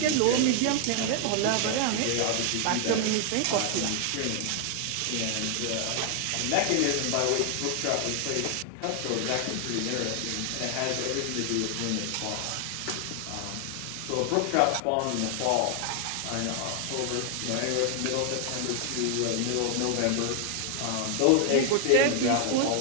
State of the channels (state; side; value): different; both; correlation 0.00